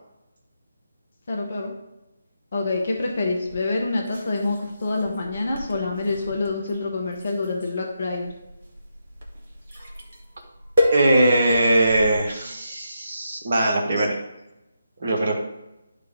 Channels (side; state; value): both; inverted; correlation -0.82